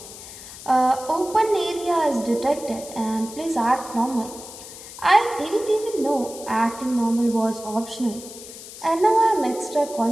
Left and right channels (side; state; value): left; noise; hiss, 14 dB below the sound